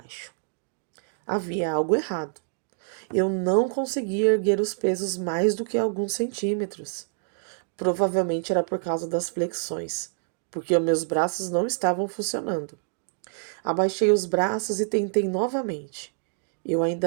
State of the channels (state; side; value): silent; left; digital silence